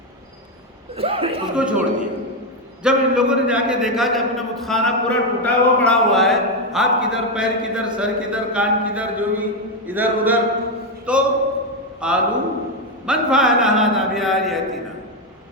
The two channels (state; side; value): normal; both; correlation 0.07